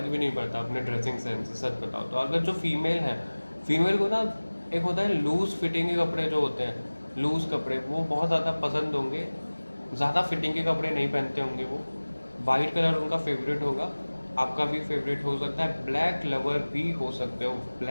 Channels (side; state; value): both; inverted; correlation -1.00